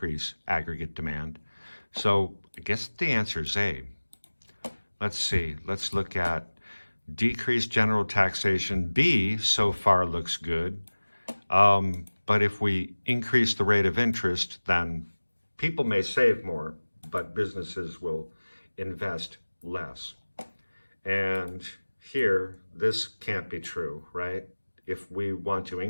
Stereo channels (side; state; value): both; inverted; correlation -1.00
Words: aggregate demand. So I guess the answer is A. Let's see. Let's look at decrease general taxation. B so far looks good. But if we increase the rate of interest, then people may save more, but businesses will invest less. And here, this can't be true, right? If we want to